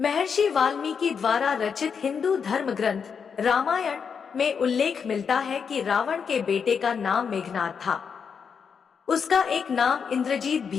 वाल्मीकि द्वारा रचित हिंदू धर्म ग्रंथ रामायण में उल्लेख मिलता है कि रावण के बेटे का नाम मेघनाद था। उसका एक नाम इंद्रजीत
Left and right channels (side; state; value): right; quieter; 6.4 dB